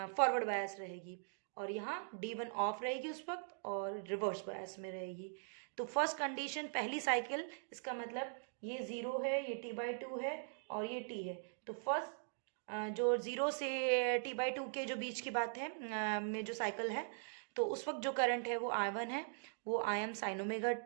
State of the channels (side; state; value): left; silent; digital silence